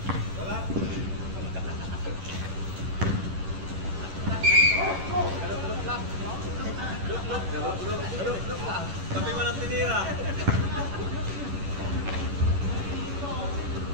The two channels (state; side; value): late; left; 11 ms